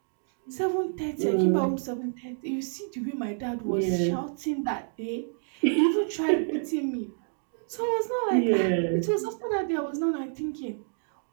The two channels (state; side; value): silent; left; 59 dB below the other